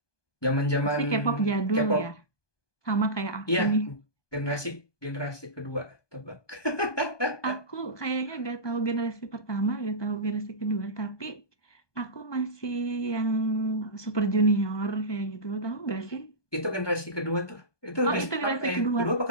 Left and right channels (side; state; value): right; late; 1.2 ms